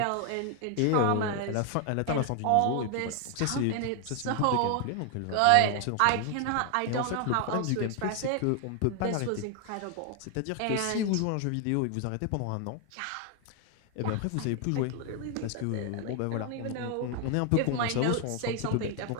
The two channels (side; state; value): both; different; correlation 0.00